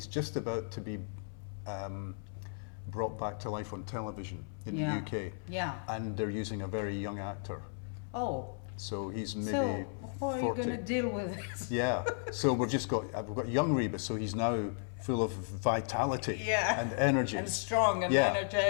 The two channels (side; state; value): right; silent; 55 dB below the other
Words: just about to be brought back to life on television in the UK. Yeah. And they're using a very young actor. Oh. So he's maybe so how 40. are you going to deal with this? Yeah. So we've got young Rebus, so he's now full of vitality and energy. And strong and